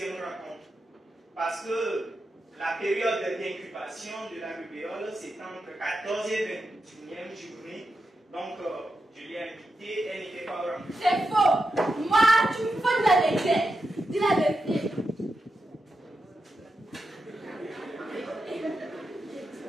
rencontre. Parce que la période d'incubation de la rubéole, c'est entre 14 et 21e journée. Donc, je l'ai invitée, elle n'était pas au rendez-vous. C'est faux. Moi, tu me fais de la vérité. Dis la vérité.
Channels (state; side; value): normal; both; correlation 0.88